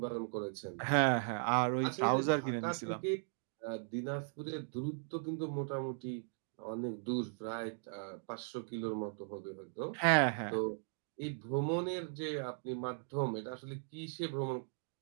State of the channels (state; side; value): silent; left; digital silence